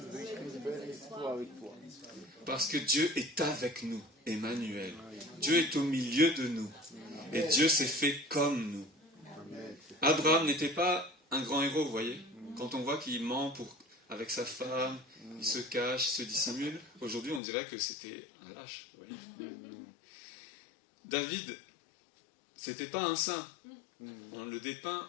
veut écrire une belle histoire avec toi. Parce que Dieu est avec nous, Emmanuel. Dieu est au milieu de nous. Et Dieu s'est fait comme nous. Abraham n'était pas un grand héros, vous voyez. Quand on voit qu'il ment avec sa femme, il se cache, il se dissimule, aujourd'hui on dirait que c'était un lâche, vous voyez. David, c'était pas un saint. On le dépeint,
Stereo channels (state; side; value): drops out; right; at 17.4 s